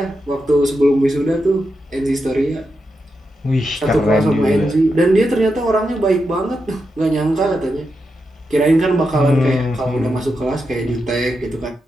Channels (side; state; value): both; normal; correlation 0.86